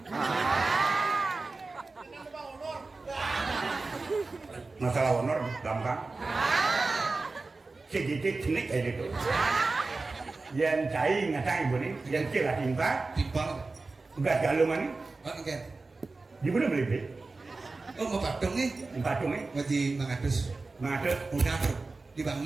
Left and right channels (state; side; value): quieter; left; 3.7 dB